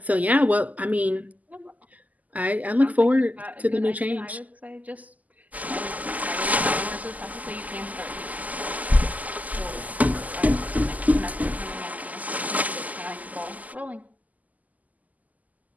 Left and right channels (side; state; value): left; late; 0.078 ms